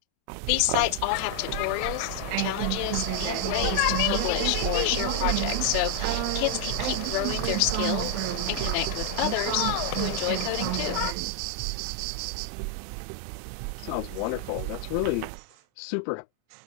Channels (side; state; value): both; different; correlation 0.00